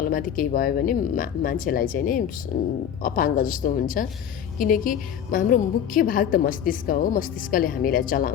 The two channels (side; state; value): right; quieter; 9.0 dB